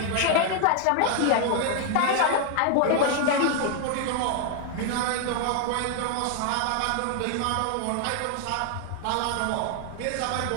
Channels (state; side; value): different; both; correlation 0.00